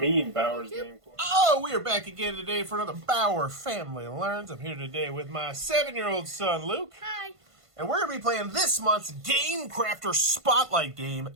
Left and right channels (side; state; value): left; late; 1.5 ms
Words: Bauer's Game Corner? Oh, we are back again today for another Bauer Family Learns. I'm here today with my 7-year-old son, Luke. Hi. And we're going to be playing this month's Gamecrafter Spotlight game,